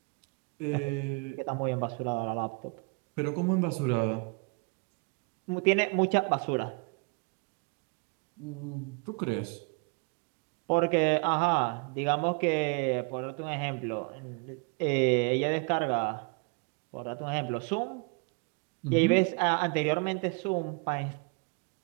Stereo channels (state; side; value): quieter; left; 33.3 dB